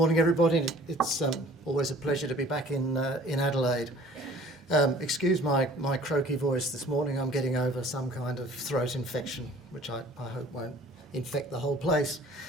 everybody. It's always a pleasure to be back in Adelaide. Excuse my croaky voice this morning. I'm getting over some kind of throat infection, which I hope won't infect the whole place.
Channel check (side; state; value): both; normal; correlation 0.51